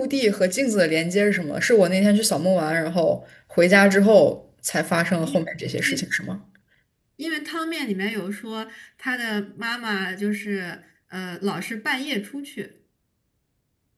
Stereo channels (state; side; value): identical; both; correlation 1.00